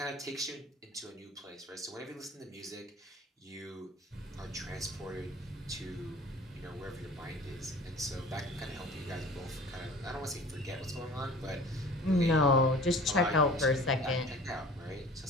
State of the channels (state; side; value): normal; both; correlation 0.44